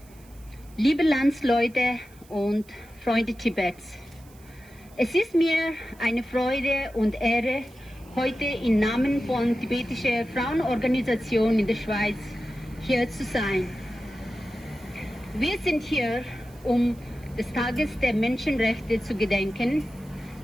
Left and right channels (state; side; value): noise; right; hiss, 27 dB below the sound